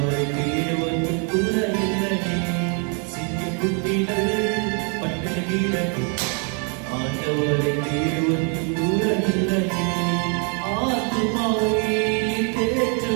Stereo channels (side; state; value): left; quieter; 38.3 dB